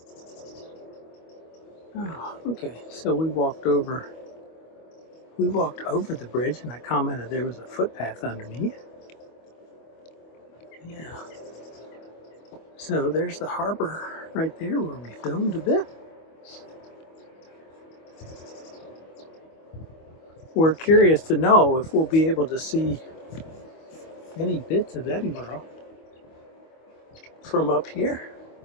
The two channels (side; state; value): right; late; 25 ms